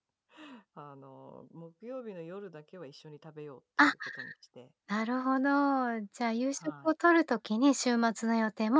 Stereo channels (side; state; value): both; identical; correlation 1.00